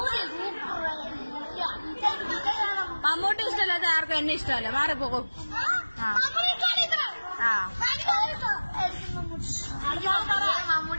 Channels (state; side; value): inverted; both; correlation -1.00